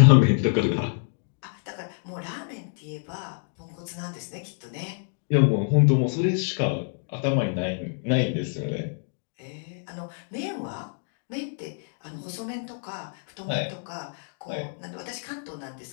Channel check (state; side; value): silent; right; 60 dB below the other